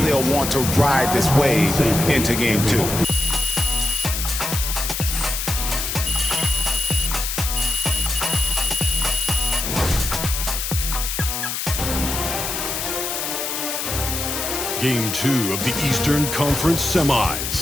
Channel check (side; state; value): left; noise; hiss, 3 dB below the sound